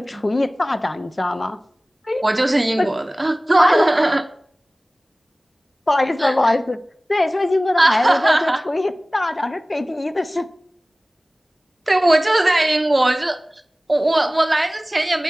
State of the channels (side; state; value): both; normal; correlation 0.98